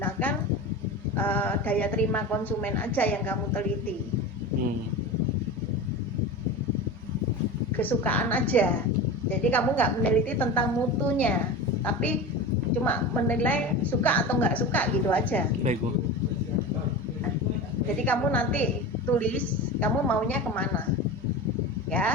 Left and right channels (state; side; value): normal; both; correlation 0.28